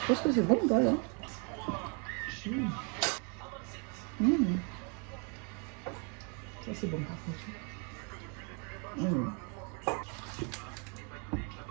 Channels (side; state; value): left; quieter; 36.6 dB